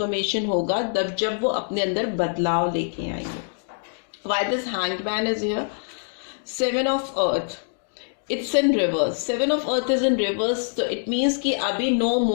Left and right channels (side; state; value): right; silent; digital silence